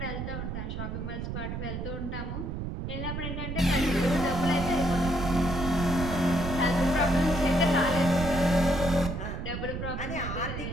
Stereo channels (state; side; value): noise; right; rumble, 5 dB below the sound